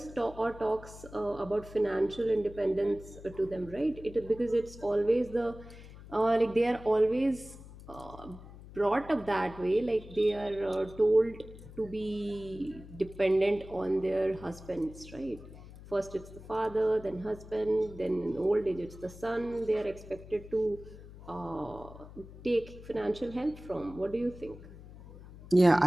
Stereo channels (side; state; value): left; noise; hum, 17 dB below the sound